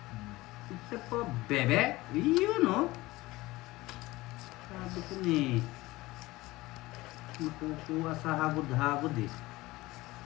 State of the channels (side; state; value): right; quieter; 19.6 dB